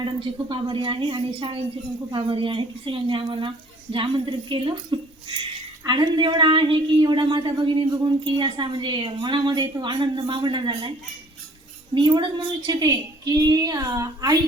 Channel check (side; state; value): both; normal; correlation 0.55